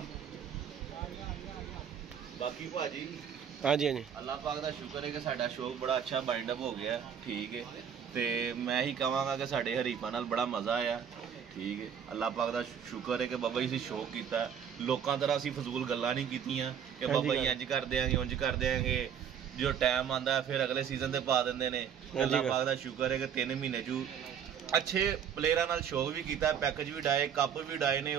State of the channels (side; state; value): left; quieter; 8.1 dB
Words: बाकी भाजी हाँ जी अल्लाह पाक दा शुक्र है कि साडा शौक बड़ा अच्छा बाइंड अप हो गया ठीक है ते मैं ही कहांगा कि साडे हरीफां नाल बड़ा मज़ा आया ठीक है अल्लाह पाक दा शुक्र है कि बाबा जी शौक कीता लोकां तरह असीं फजूल गल्लां नहीं कीतियां कि बाबा जी इंज कर देंगे उंज कर देंगे जो टाइम आंदा है फिर अगले सीजन ते पा दिंदे ने अल्लाह पाक दा शुक्र है कि 3 महीने चू अच्छे प्लेयरां नाल शौक भी कीता पैकेज भी डाए कप भी डाए ने